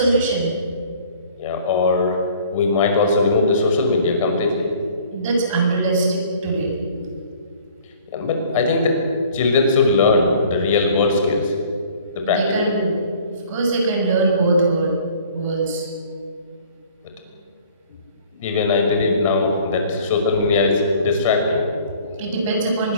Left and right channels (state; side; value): inverted; both; correlation -0.52